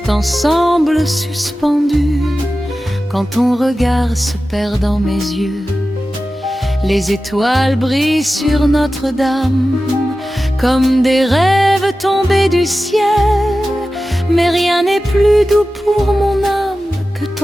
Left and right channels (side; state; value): both; normal; correlation 0.94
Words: semble suspendu quand ton regard se perd dans mes yeux. Les étoiles brillent sur Notre-Dame comme des rêves tombés du ciel. Mais rien n'est plus doux pour mon âme que